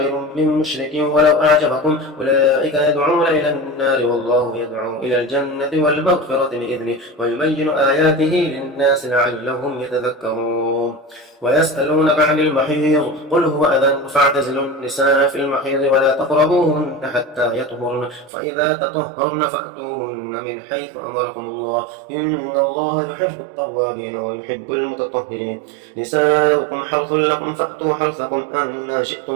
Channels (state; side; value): drops out; left; at 18.3 s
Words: من مشرك ولو أعجبكم أولئك يدعون إلى النار والله يدعو إلى الجنة والمغفرة بإذنه ويبين آياته للناس لعلهم يتذكرون ويسألونك عن المحيض قل هو أذى فاعتزلوا النساء في المحيض ولا تقربوهن حتى يطهرن فإذا تطهرن فأتوهن من حيث أمركم الله إن الله يحب التوابين ويحب المتطهرين نساؤكم حرث لكم فأتوا حرثكم أن